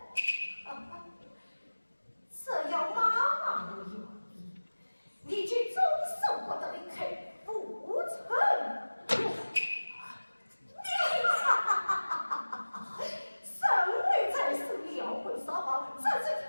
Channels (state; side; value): inverted; both; correlation -1.00